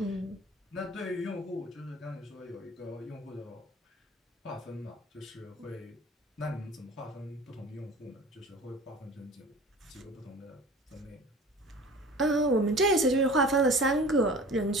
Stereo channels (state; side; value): normal; both; correlation 0.42